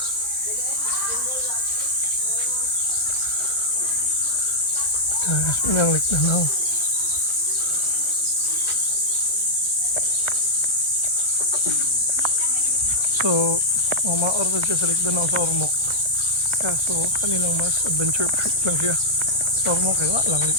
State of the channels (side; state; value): right; late; 1.4 ms